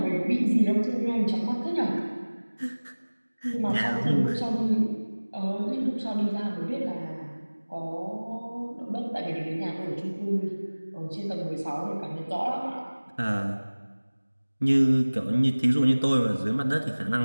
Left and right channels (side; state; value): both; inverted; correlation -1.00